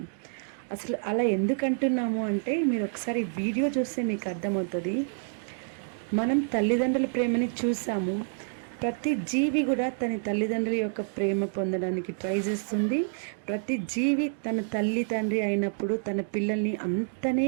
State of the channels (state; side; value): silent; left; digital silence